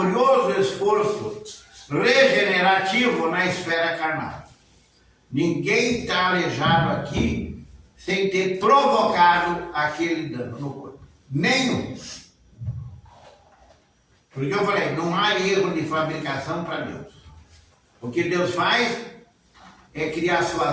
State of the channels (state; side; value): identical; both; correlation 1.00